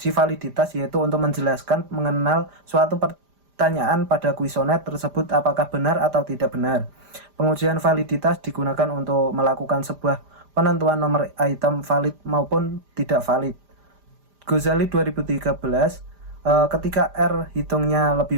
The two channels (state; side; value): late; left; 5.0 ms